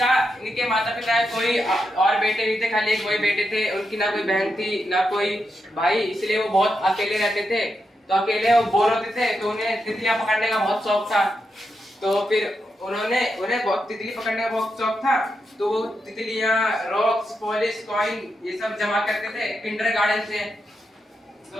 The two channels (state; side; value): normal; both; correlation 0.85